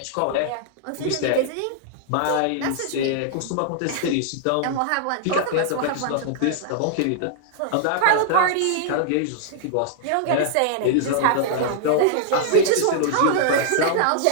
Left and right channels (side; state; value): both; different; correlation -0.01